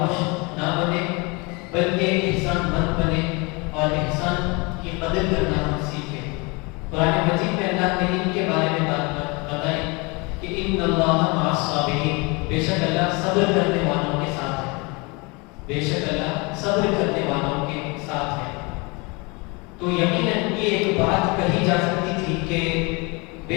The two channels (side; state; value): right; quieter; 28.2 dB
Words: نہ بنے بلکہ احسان مند بنے اور احسان کی قدر کرنا ہم سیکھیں. قرآن مجید میں اللہ نے ان کے بارے میں بات بتائی کہ ان اللہ مع الصابرین، بے شک اللہ صبر کرنے والوں کے ساتھ ہے. بے شک اللہ صبر کرنے والوں کے ساتھ ہے. تو یقیناً یہ ایک بات کہی جا سکتی تھی کہ